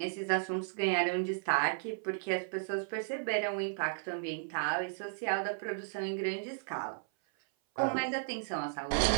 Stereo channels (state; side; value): silent; left; 55 dB below the other